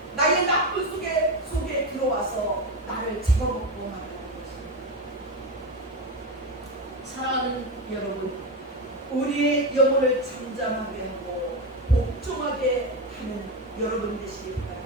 나의 나쁜 속에 들어와서 나를 잡아먹고 말하는 것입니다. 사랑하는 여러분, 우리의 영혼을 잠잠하게 하고 복종하게 하는 여러분 되시기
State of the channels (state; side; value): normal; both; correlation 0.15